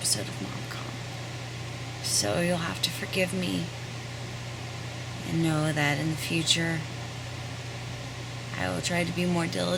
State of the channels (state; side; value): identical; both; correlation 1.00